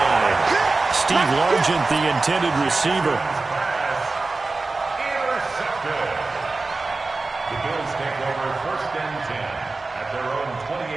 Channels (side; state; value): left; quieter; 3.6 dB